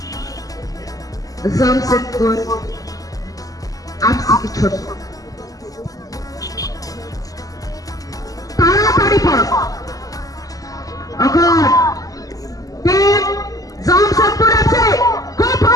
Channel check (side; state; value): right; late; 0.17 ms